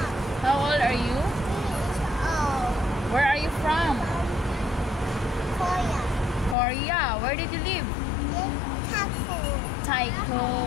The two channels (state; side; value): drops out; right; at 6.6 s